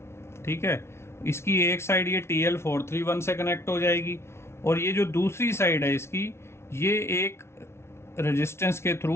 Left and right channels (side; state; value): right; late; 0.13 ms